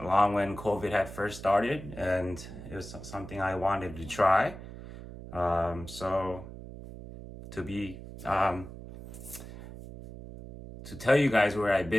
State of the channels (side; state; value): right; noise; hum, 13 dB below the sound